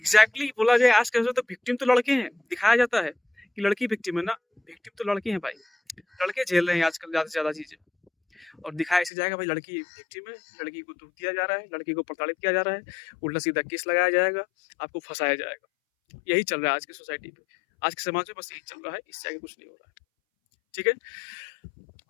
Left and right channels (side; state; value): right; drops out; at 9.1 s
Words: बोला जाए आज के तो विक्टिम तो लड़के हैं, दिखाया जाता है कि लड़की विक्टिम है ना। विक्टिम तो लड़के हैं भाई। लड़के झेल रहे हैं आजकल ज्यादा से ज्यादा चीजें। और दिखाया ऐसे जाएगा भाई लड़की विक्टिम है, लड़की को दुख दिया जा रहा है, लड़की को प्रताड़ित किया जा रहा है, उल्टा सीधा केस लगाया जाएगा, आपको फंसाया जाएगा। यही चल रहा है आज की सोसाइटी पे, आज के समाज में बस यही चल रहा है, इससे आगे कुछ नहीं हो रहा है। ठीक है।